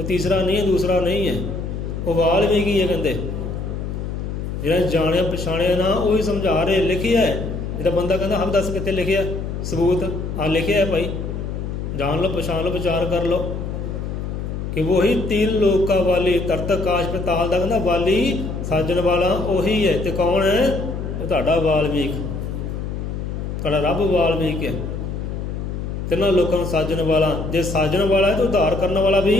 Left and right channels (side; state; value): left; noise; hum, 5 dB below the sound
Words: ਤੀਸਰਾ ਨਹੀਂ ਹੈ, ਦੂਸਰਾ ਨਹੀਂ ਹੈ। ਉਹ ਵਾਲਮੀਕ ਹੀ ਹੈ, ਕਹਿੰਦੇ ਜਿਹੜਾ ਜਾਣਿਆ ਪਛਾਣਿਆ ਨਾ, ਉਹੀ ਸਮਝਾ ਰਹੇ। ਲਿਖਿਆ ਹੈ, ਜਿਹੜਾ ਬੰਦਾ ਕਹਿੰਦਾ ਹਮ ਦੱਸ ਕਿੱਥੇ ਲਿਖਿਆ ਸਬੂਤ, ਆ ਲਿਖਿਆ ਹੈ ਭਾਈ, ਜਾਣ ਲਓ, ਪਛਾਣ ਲਓ, ਵਿਚਾਰ ਕਰ ਲਓ। ਕਿ ਵਹੀ तीन ਲੋਕਾਂ ਵਾਲੀ, ਤਰਤ ਆਕਾਸ਼ ਪਤਾਲ ਦਾ ਕਹਿੰਦਾ ਵਾਲੀ, ਸਾਜਣ ਵਾਲਾ ਉਹੀ ਹੈ। ਤੇ ਕੌਣ ਹੈ? ਉਹ ਤੁਹਾਡਾ ਵਾਲਮੀਕ, ਤੁਹਾਡਾ ਰੱਬ ਵਾਲਮੀਕ ਹੈ। ਤਿੰਨਾਂ ਲੋਕਾਂ ਨੂੰ ਸਾਜਣ ਵਾਲਾ। ਜੇ ਸਾਜਣ ਵਾਲਾ ਹੈ ਤਾਂ ਉਧਾਰ ਕਰਨ ਵਾਲਾ